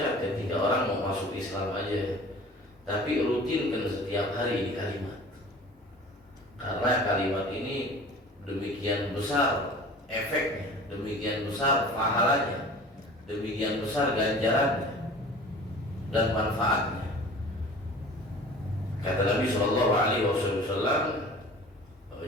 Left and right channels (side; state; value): both; normal; correlation 0.43